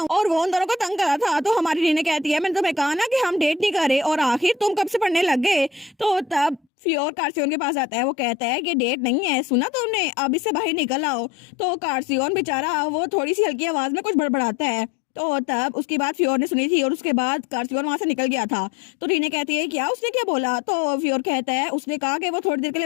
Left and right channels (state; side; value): drops out; right; at 6.6 s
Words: और वो उन दोनों को तंग करा था। तो हमारी रीने कहती है मैंने तुम्हें कहा ना कि हम डेट नहीं कर रहे, और आखिर तुम कब से पढ़ने लग गए। तो तब फ्योर कार्सियन के पास आता है। वो कहता है कि डेट नहीं है, सुना तुमने, अब इससे बाहर निकल आओ। तो कार्सियन बेचारा वो थोड़ी सी हल्की आवाज में कुछ बड़बड़ाता है। तो तब उसकी बात फ्योर ने सुनी थी और उसके बाद कार्सियन वहां से निकल गया था। तो रीने कहती है क्या उसने क्या बोला। तो फ्योर कहता है उसने कहा कि वो थोड़ी देर के लिए